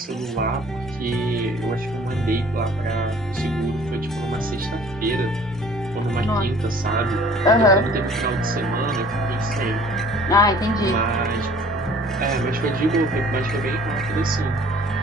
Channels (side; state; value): both; normal; correlation 0.52